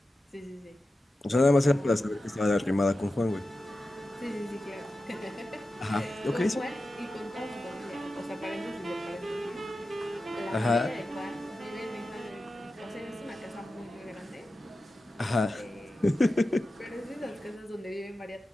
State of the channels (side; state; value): both; normal; correlation 0.93